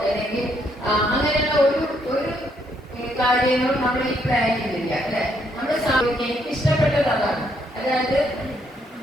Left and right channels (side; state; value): both; normal; correlation 0.73